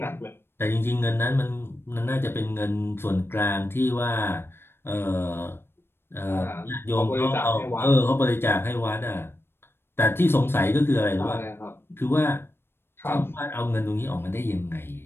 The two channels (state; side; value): late; right; 0.11 ms